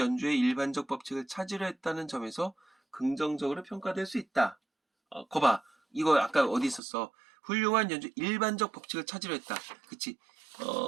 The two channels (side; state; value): left; drops out; at 6.8 s